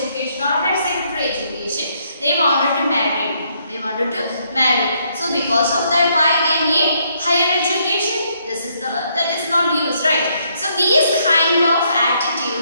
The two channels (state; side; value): inverted; both; correlation -0.72